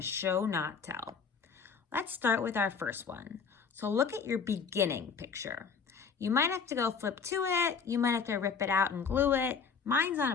show, not tell. Let's start with our first one. So look at your beginning picture. You might have to go flip to it. You might have to rip it out and glue it. Mine's on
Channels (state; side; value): quieter; right; 5.8 dB